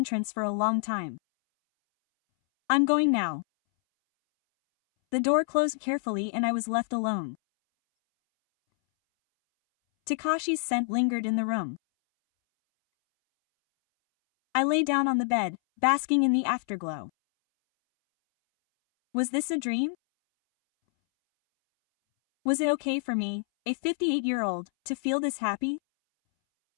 for a long time. I'm going now. The door closed carefully and I was left alone. Takashi's scent lingered in the room. I lay down on the bed, basking in the afterglow. Was this a dream? Was it okay for me, a 58-year-old, to feel this happy?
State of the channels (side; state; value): right; silent; 60 dB below the other